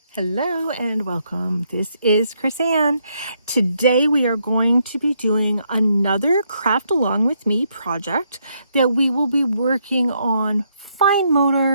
Hello and welcome. This is Chris Ann. Today we are going to be doing another Craft Along With Me project that we will be working on fine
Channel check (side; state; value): both; inverted; correlation -0.75